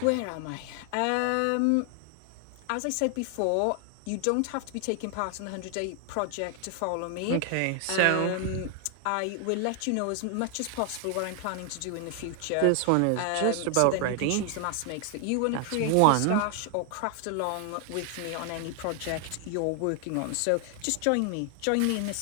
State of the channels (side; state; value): both; different; correlation 0.00